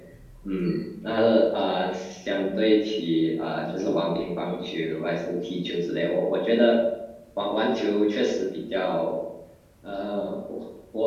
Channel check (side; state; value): both; identical; correlation 1.00